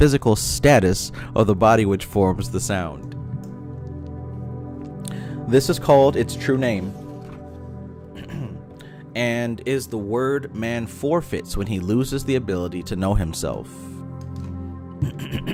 status of the body which forms the sound. This is called its true name. and is the word man forfeits when he loses the ability to know himself.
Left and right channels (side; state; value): both; identical; correlation 1.00